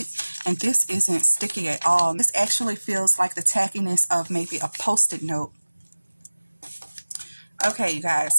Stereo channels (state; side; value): inverted; both; correlation -1.00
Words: and this isn't sticky at all. This actually feels like the tackiness of maybe a Post-it note. Okay, you